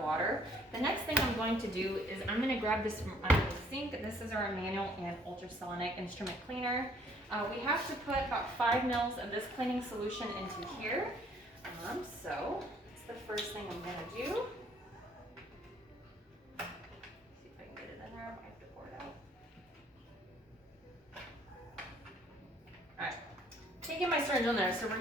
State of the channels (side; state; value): both; normal; correlation 0.61